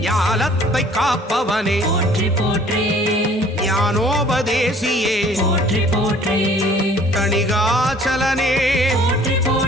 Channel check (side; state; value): both; normal; correlation 0.54